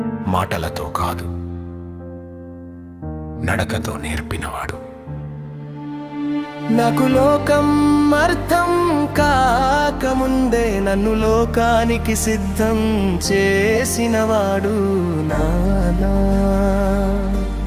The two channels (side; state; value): both; identical; correlation 1.00